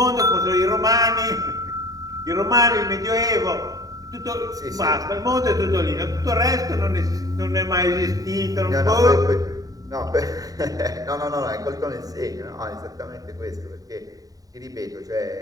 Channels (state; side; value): late; left; 0.18 ms